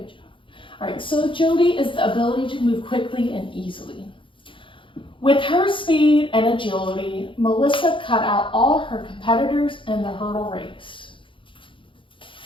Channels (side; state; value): right; late; 0.25 ms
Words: job. All right, so agility is the ability to move quickly and easily. With her speed and agility, Melissa cut out all her competitors in the hurdle race.